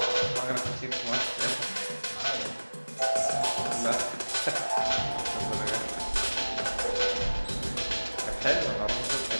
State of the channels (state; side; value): inverted; both; correlation -1.00